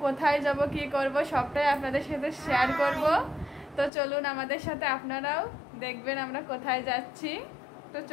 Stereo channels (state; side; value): drops out; right; at 3.9 s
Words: কোথায় যাব কি করব সবটাই আপনাদের সাথে শেয়ার করব। তো চলুন আমাদের সাথে, আপনারাও দেখবেন আমরা কোথায় যাচ্ছি। তো